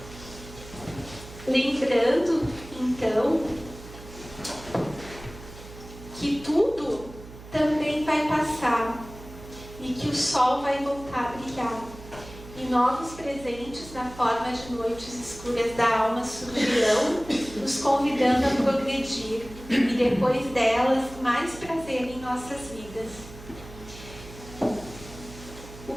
Lembrando, então, que tudo também vai passar e que o sol vai voltar a brilhar. E novos presentes na forma de noites escuras da alma surgirão, nos convidando a progredir, e depois delas, mais prazer em nossas vidas. O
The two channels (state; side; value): noise; right; hum, 16 dB below the sound